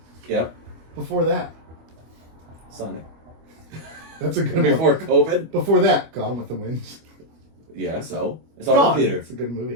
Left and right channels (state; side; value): late; left; 25 ms